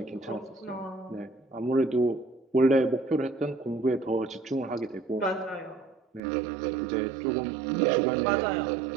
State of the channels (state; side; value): drops out; left; at 6.2 s